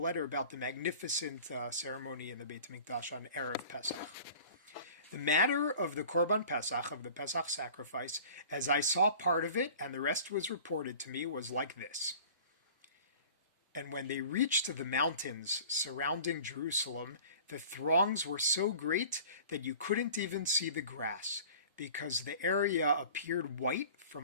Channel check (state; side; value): inverted; both; correlation -0.44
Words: about the magnificent ceremony in the Beit Hamikdash on Erev Pesach. The matter of the Korban Pesach, of the Pesach sacrifice, as I saw part of it, and the rest was reported to me, was like this. And when they reached the mountains surrounding Jerusalem, the throngs were so great that you couldn't even see the grass, because the area appeared white